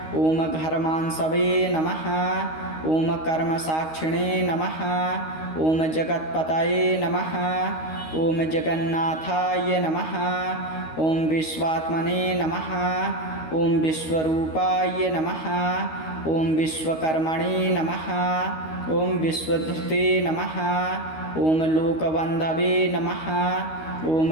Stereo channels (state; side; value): late; right; 13 ms